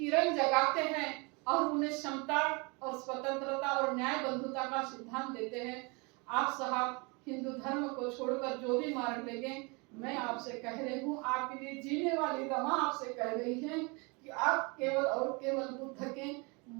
जगाते हैं और उन्हें समता और स्वतंत्रता और न्याय बंधुता का सिद्धांत देते हैं। आप साहब हिंदू धर्म को छोड़कर जो भी मार्ग लेंगे, मैं आपसे कह रही हूँ, आपके लिए जीने वाली रमा आपसे कह रही है कि आप केवल और केवल बुद्ध के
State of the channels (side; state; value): left; quieter; 29.5 dB